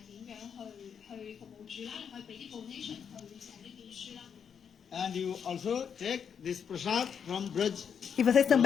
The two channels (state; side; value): quieter; right; 7.3 dB